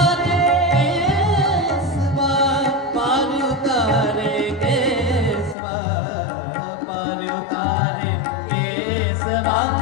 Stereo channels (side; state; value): right; drops out; at 5.6 s